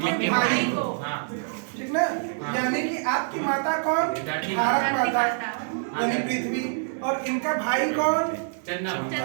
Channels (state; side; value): silent; left; digital silence